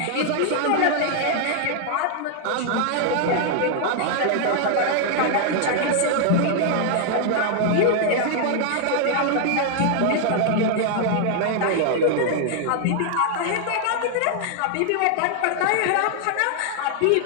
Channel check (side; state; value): both; different; correlation 0.00